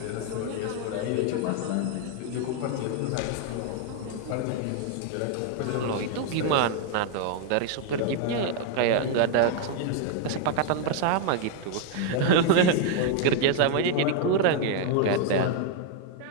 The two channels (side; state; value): both; different; correlation 0.00